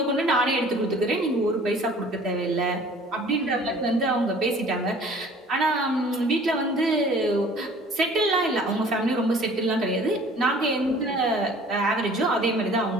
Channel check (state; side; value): normal; both; correlation 0.50